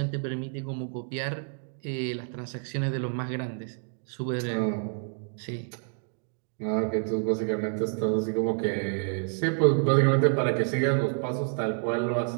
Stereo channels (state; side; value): silent; left; 55 dB below the other